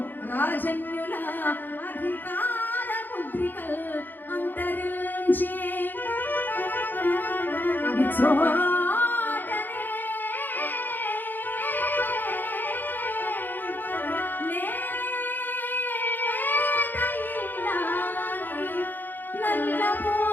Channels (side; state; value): right; late; 0.089 ms